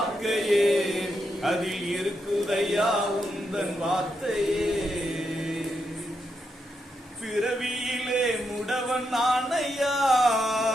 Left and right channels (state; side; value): normal; both; correlation 0.82